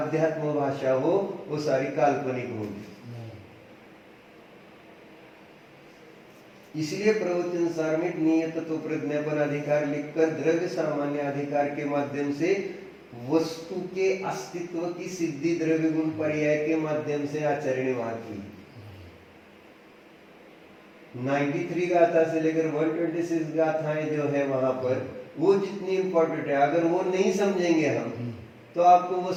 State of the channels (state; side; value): identical; both; correlation 1.00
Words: भाषा हो, वो सारी काल्पनिक होगी। इसलिए प्रवचन सार में नियत तो प्रज्ञापन अधिकार लिखकर द्रव्य सामान्य अधिकार के माध्यम से वस्तु के अस्तित्व की सिद्धि द्रव्य गुण पर्याय के माध्यम से आचरण वहां की 93 गाथा से लेकर 126 गाथाएं जो है वहां पर, वो जितनी इंपॉर्टेंट है, अगर वो नहीं समझेंगे हम तो आपको